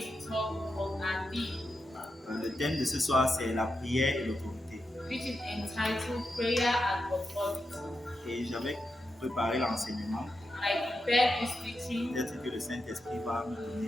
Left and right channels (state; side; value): normal; both; correlation 0.87